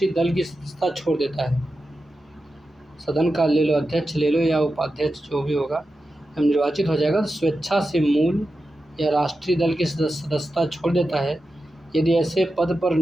दल की सदस्यता छोड़ देता है। सदन का ले लो, अध्यक्ष ले लो या उपाध्यक्ष जो भी होगा, जब निर्वाचित हो जाएगा तो स्वेच्छा से मूल या राष्ट्रीय दल की सदस्यता छोड़ देता है। यदि ऐसे पद पर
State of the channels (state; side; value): normal; both; correlation 0.91